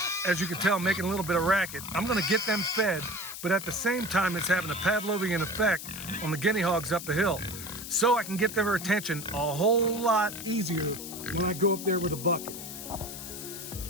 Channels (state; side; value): noise; left; hiss, 10 dB below the sound